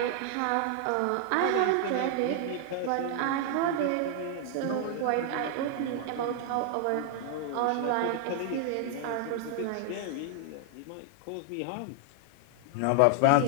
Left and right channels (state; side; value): different; both; correlation 0.00